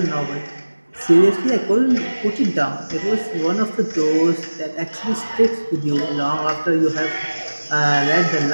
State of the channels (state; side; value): inverted; both; correlation -1.00